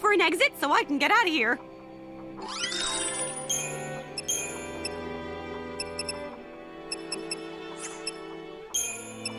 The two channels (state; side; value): identical; both; correlation 1.00